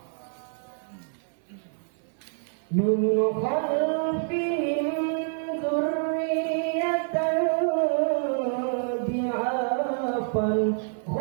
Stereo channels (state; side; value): silent; left; digital silence